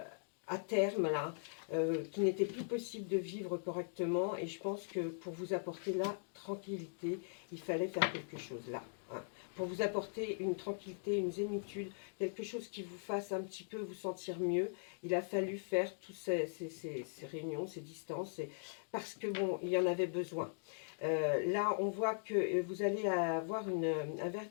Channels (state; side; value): silent; right; digital silence